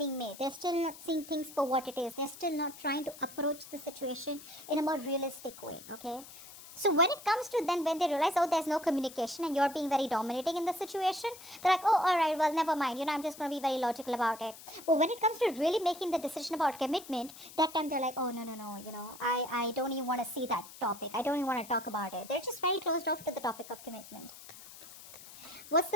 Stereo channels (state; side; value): noise; left; hiss, 16 dB below the sound